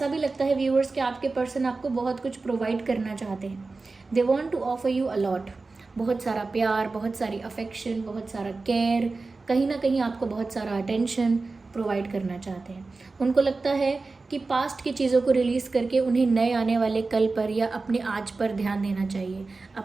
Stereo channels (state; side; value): quieter; left; 3.8 dB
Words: भी लगता है व्यूअर्स कि आपके पर्सन आपको बहुत कुछ प्रोवाइड करना चाहते हैं। They want to offer you a lot, बहुत सारा प्यार, बहुत सारी अफेक्शन, बहुत सारा केयर, कहीं ना कहीं आपको बहुत सारा अटेंशन प्रोवाइड करना चाहते हैं। उनको लगता है कि पास्ट की चीज़ों को रिलीज़ करके उन्हें नए आने वाले कल पर या अपने आज पर ध्यान देना चाहिए,